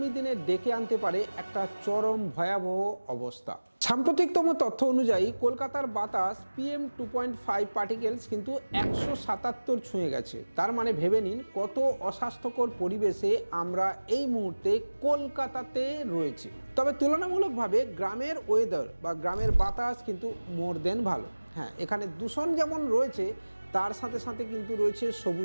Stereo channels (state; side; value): inverted; both; correlation -1.00